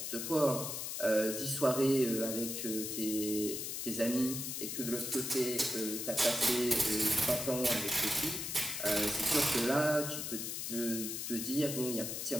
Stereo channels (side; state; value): left; noise; hiss, 4 dB below the sound